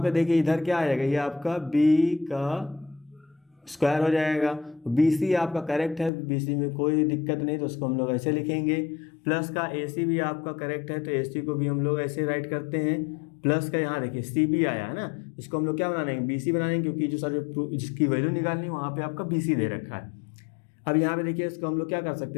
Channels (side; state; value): right; drops out; at 6.1 s